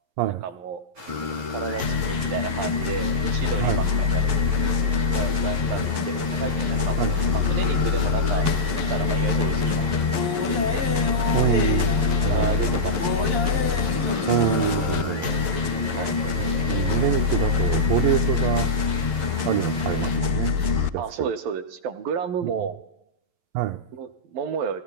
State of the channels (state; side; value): late; left; 11 ms